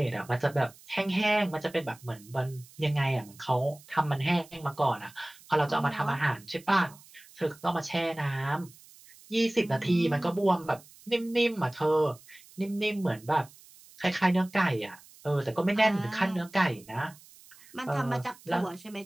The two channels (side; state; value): right; noise; hiss, 23 dB below the sound